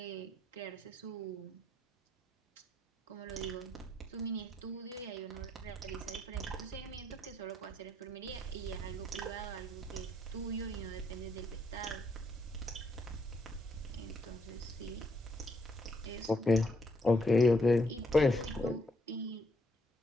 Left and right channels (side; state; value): both; normal; correlation 0.73